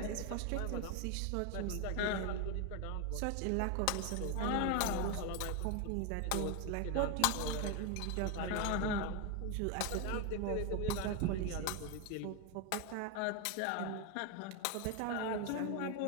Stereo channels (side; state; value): both; different; correlation 0.01